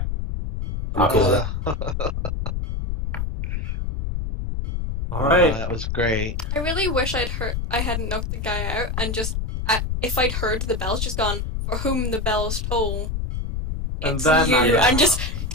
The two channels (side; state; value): left; noise; rumble, 2 dB below the sound